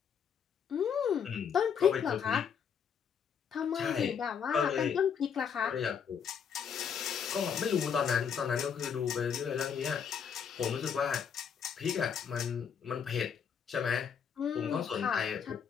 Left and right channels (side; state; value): right; quieter; 7.3 dB